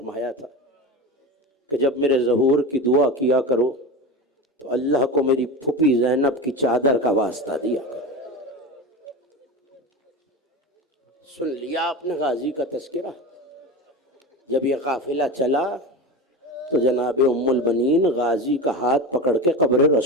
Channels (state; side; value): normal; both; correlation 0.26